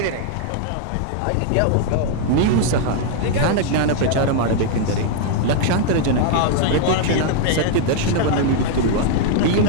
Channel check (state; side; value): different; both; correlation 0.00